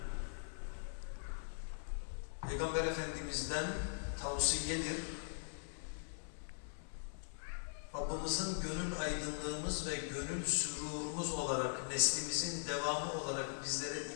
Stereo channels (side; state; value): right; silent; 50 dB below the other